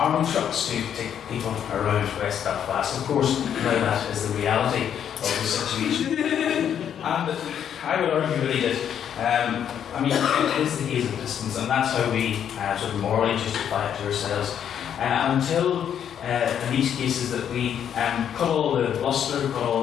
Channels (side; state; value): right; quieter; 9.0 dB